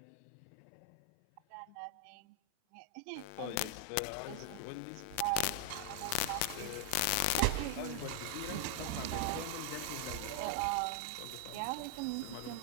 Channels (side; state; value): both; different; correlation 0.00